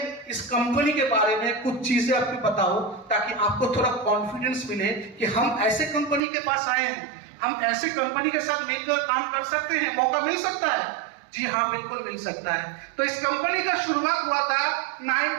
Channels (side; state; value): left; drops out; at 6.2 s